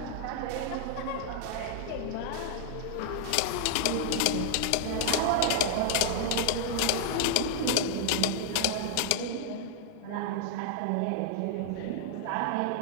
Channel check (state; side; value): different; both; correlation 0.00